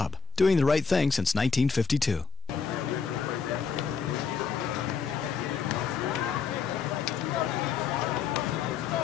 doing the right thing since 1952.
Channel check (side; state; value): right; quieter; 5.6 dB